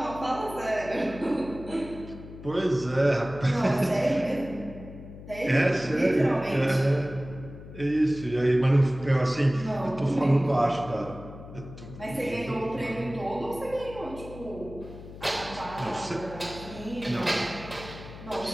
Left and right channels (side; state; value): left; noise; hum, 14 dB below the sound